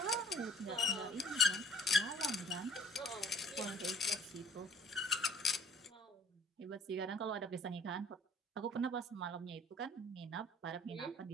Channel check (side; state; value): both; normal; correlation 0.54